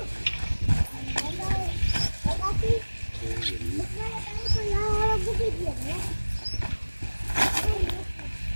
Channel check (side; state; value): both; inverted; correlation -1.00